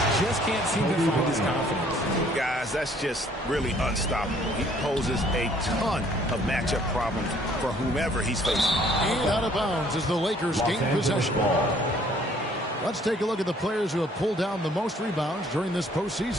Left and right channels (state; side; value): normal; both; correlation 0.60